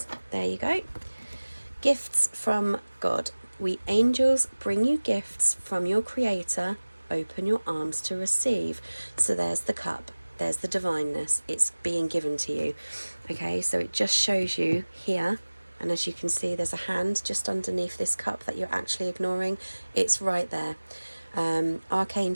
There you go. Gifts from God. We angels bring you gifts from your Creator. Open your arms to receive. So there's the cup. There's the divineness. It's being given to you. Okay, so it just shows you here. And as you can see, there's a hand just underneath this cup that you're actually ignoring. It's right there.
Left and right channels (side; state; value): both; inverted; correlation -1.00